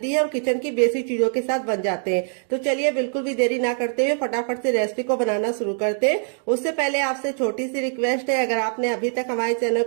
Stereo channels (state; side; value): silent; left; 63 dB below the other